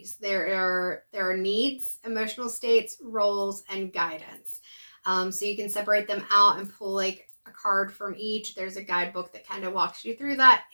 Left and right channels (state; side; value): inverted; both; correlation -1.00